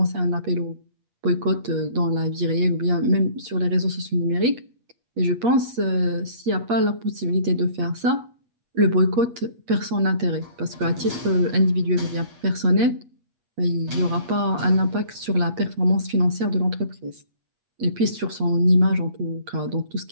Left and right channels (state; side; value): late; left; 8.4 ms